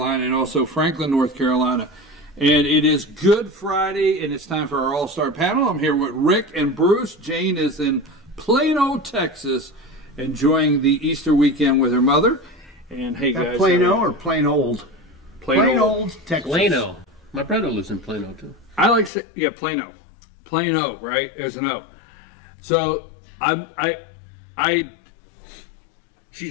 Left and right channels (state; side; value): drops out; right; at 19.1 s